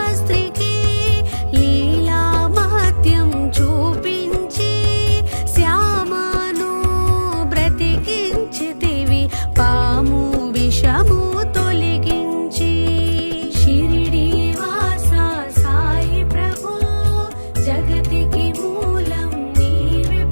లీలా మహత్యం చూపించి శ్యామను బ్రతికించితివి, పాము విషము తొలగించి. షిరిడి వాస సాయి ప్రభు, జగతికి మూలం నీవే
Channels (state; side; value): inverted; both; correlation -1.00